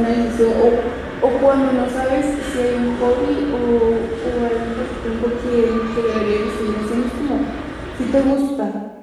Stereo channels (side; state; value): both; identical; correlation 1.00